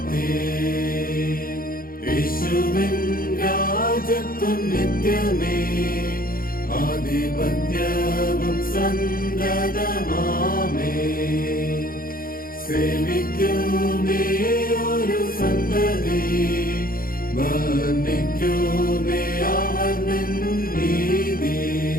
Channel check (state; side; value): late; right; 0.42 ms